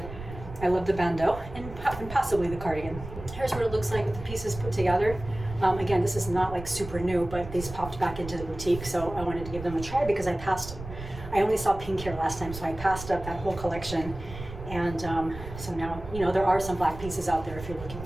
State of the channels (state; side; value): noise; right; rumble, 12 dB below the sound